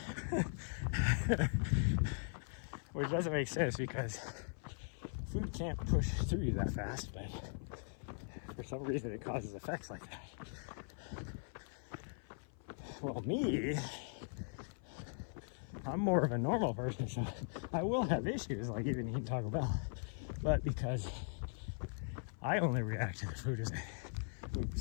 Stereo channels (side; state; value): right; silent; 51 dB below the other